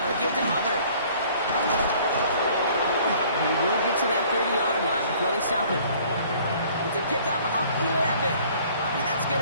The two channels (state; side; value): inverted; both; correlation -0.55